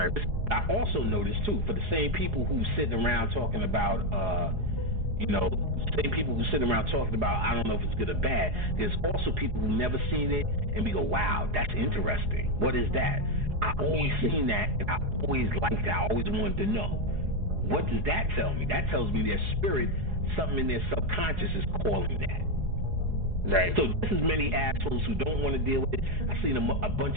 I also noticed, too, for the same people who sitting around talking about, same people who sitting around talking about, I don't know if it's good or bad, there's also people who never seen it and we go, wow, that's interesting. What is that? I always seen that, and I always liked that. I always wanted to know. What does that tell me? That tells me their spirit, something in their subconscious is calling that. Right. So this is many assholes who don't want to deal with it. I've seen a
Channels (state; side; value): late; left; 4.8 ms